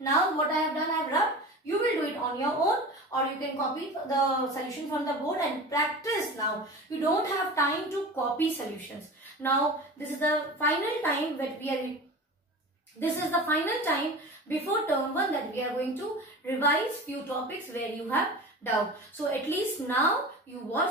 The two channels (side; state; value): both; normal; correlation 0.33